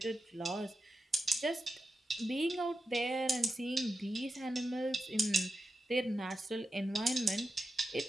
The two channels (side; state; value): both; normal; correlation 0.90